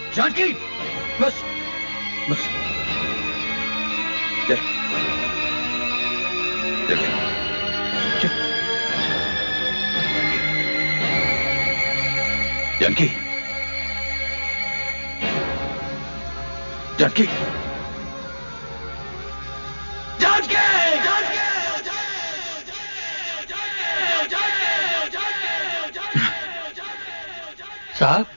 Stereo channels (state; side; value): inverted; both; correlation -1.00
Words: जानकी, बस, बस, चल, चल, चल, जानकी, जानकी, जानकी, साहब,